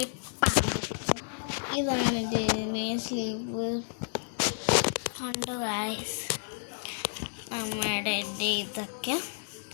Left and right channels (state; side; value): silent; right; digital silence